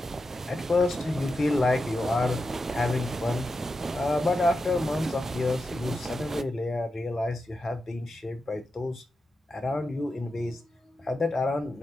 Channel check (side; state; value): both; normal; correlation 0.89